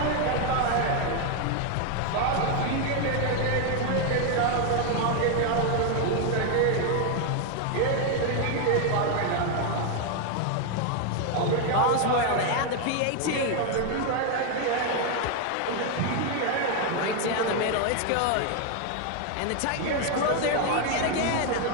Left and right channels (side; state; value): both; different; correlation 0.01